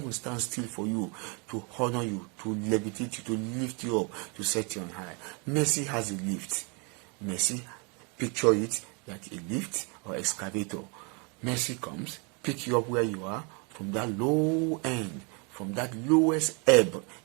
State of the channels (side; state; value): left; quieter; 33.2 dB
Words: stand still for you, to honor you, to levitate you, to lift you up, to set you on high. Mercy has a lift. Mercy, picture it like a lift or excavator. Mercy comes, pick you up where you are from that low end, from that lowest ebb